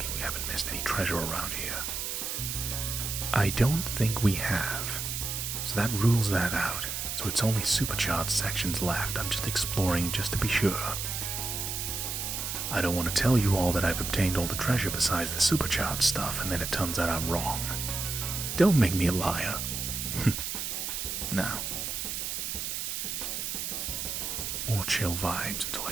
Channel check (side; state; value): right; noise; hiss, 3 dB below the sound